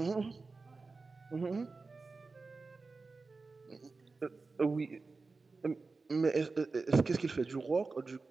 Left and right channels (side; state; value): left; quieter; 4.0 dB